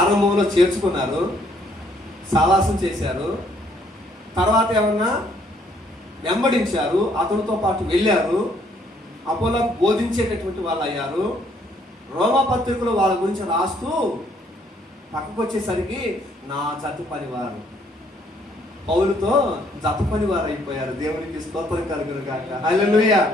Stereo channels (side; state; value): both; normal; correlation 0.67